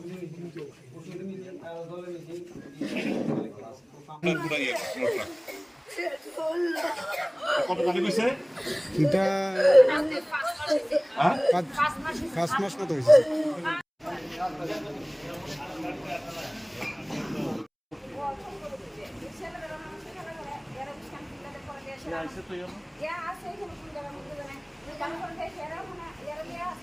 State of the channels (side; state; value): both; identical; correlation 1.00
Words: কত টাকা কইছে এটা 5 মাস মতো হয়েছে